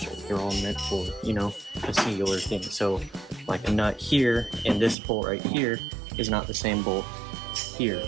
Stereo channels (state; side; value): drops out; left; at 5.0 s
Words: They're all meant for, you know, a singular thing. So like a nut here and this bolt right here is not the same bolt here.